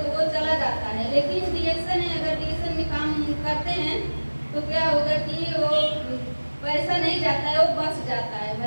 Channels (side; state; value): both; inverted; correlation -1.00